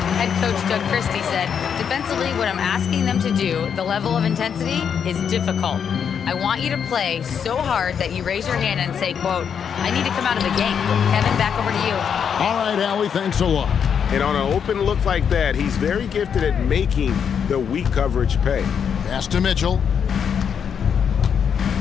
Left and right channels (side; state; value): right; quieter; 7.5 dB